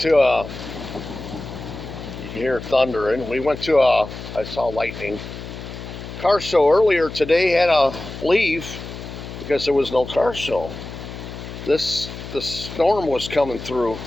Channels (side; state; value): left; noise; hum, 11 dB below the sound